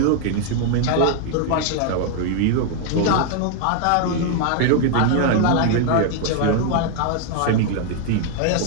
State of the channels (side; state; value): both; different; correlation 0.00